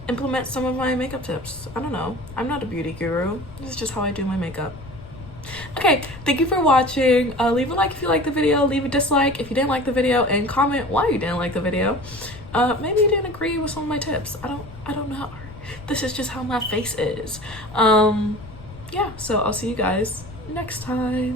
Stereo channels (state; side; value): noise; left; rumble, 17 dB below the sound